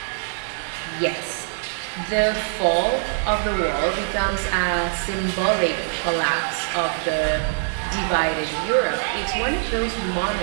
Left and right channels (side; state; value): left; silent; 63 dB below the other